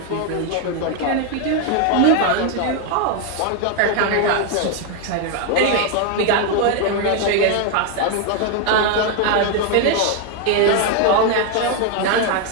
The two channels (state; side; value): different; both; correlation 0.01